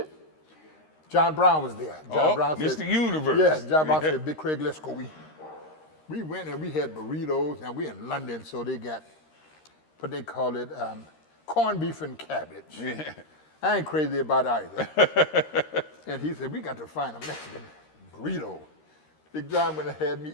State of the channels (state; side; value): late; right; 13 ms